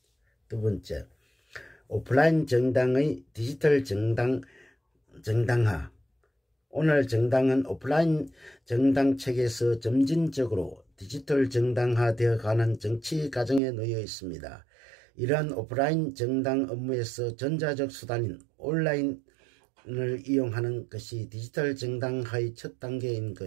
두 번째, 오프라인 정당의 디지털 정당화. 오늘 정당은 오프라인 정당 체계에서 점진적으로 디지털 정당화되어 가는 정치 과정에 놓여 있습니다. 이러한 오프라인 정당 업무에서 전자적 수단인 온라인을 이용하는 것이 디지털 정당화의 첫 단계인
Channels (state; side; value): drops out; left; at 13.6 s